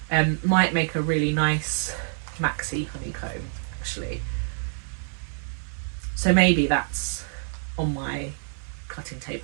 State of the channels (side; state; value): left; silent; 61 dB below the other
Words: might make a really nice maxi honeycomb, actually. So maybe that's on my cutting